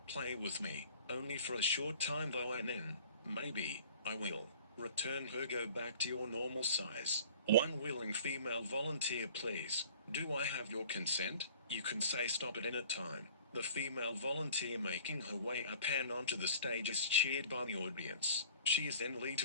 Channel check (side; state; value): both; inverted; correlation -0.49